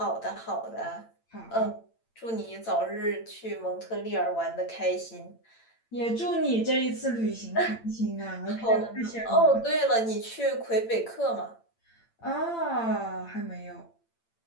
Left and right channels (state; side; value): late; right; 8.8 ms